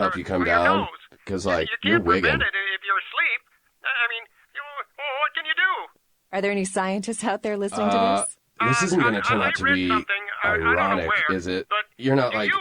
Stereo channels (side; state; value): both; identical; correlation 1.00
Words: you come or your down? nose. Because, like, You you're can't wigging. prevent it if you're asleep. I mean, what can you do? Are there any scientists out there listening to this? This isn't going to turn out to be I don't know ironic, where, is it? but You're not do like you